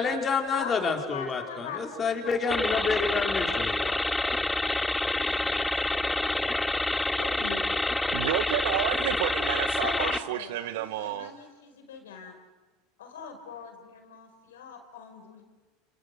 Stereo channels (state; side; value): normal; both; correlation 0.70